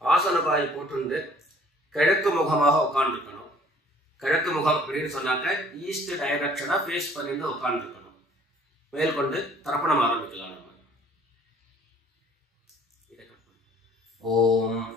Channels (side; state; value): both; normal; correlation 0.56